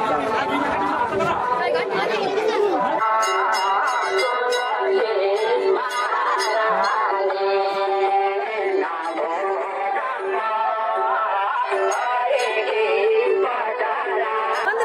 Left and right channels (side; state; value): both; identical; correlation 1.00